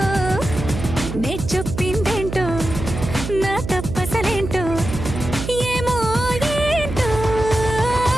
నే చెప్పిందేంటో నా తప్పసలేంటో ఏమో ఏంటో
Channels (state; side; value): noise; right; hum, 7 dB below the sound